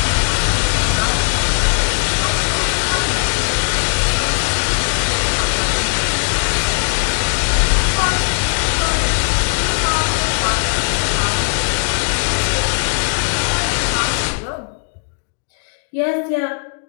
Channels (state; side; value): silent; right; digital silence